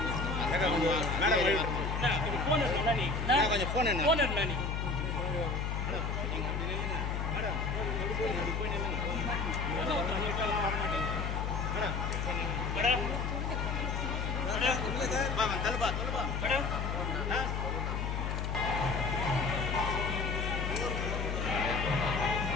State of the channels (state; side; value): noise; left; hum, 1 dB below the sound